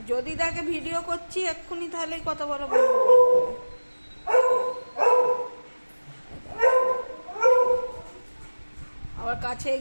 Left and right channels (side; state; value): both; inverted; correlation -1.00